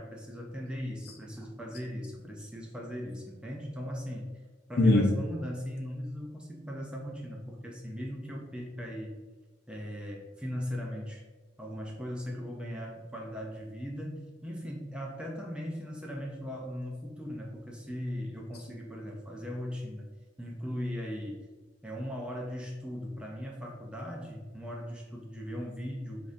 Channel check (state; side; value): normal; both; correlation 0.80